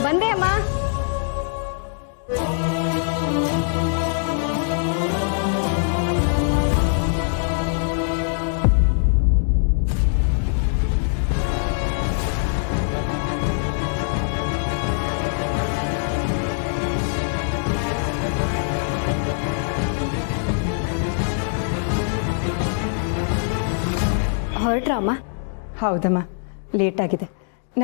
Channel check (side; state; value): right; silent; digital silence